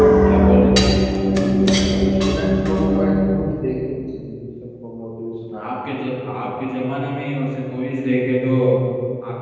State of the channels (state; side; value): identical; both; correlation 1.00